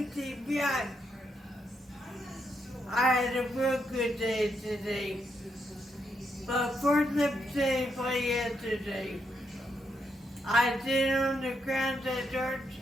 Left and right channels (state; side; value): normal; both; correlation 0.80